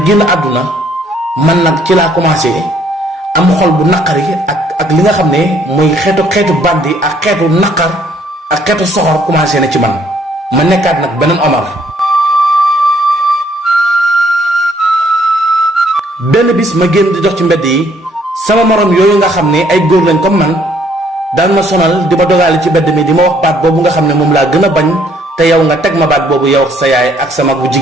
génn àdduna man nag ci laa commencé am xol bu naqari ak li nga xam ne mooy xeetu bandi ak xeetu naqar ak xeetu soxor commencé na ci man ma nekkaat nag beneen Omar. benn bis ma génn di dox ci mbedd yi sama morom yooyu nga xam ne ay góor lañ comme man daan ma sonal di ma dogaale ci mbedd mi di ma wax baat boobu nga xam ne moom laa gën a bañ te yow nga teg ma baat boobu yow sa yaay ak sa mag bu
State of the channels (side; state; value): both; normal; correlation 0.65